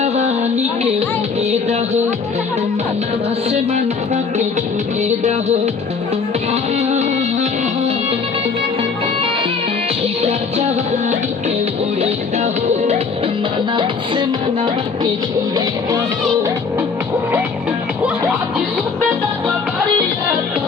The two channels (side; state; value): right; quieter; 5.1 dB